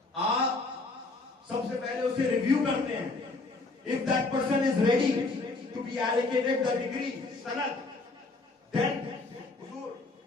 آپ سب سے پہلے اسے ریویو کرتے ہیں. If that person is ready to be allocated the degree, sanad, then حضور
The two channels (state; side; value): quieter; right; 3.4 dB